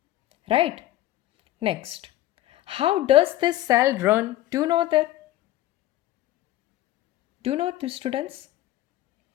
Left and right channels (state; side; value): quieter; right; 14.8 dB